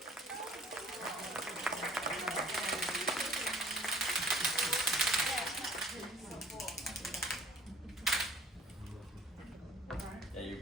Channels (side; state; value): both; normal; correlation 0.54